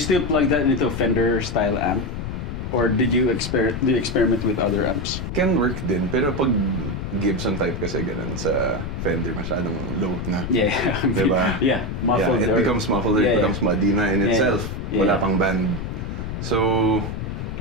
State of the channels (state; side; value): noise; left; rumble, 5 dB below the sound